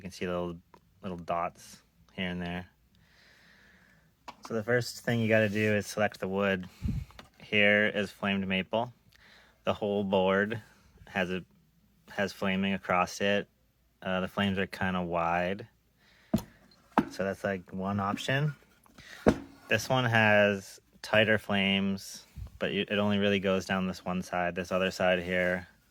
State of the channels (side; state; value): both; identical; correlation 1.00